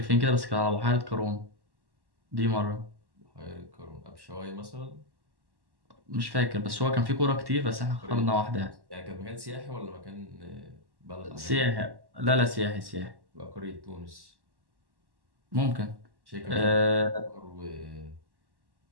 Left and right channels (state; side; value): late; left; 1.1 ms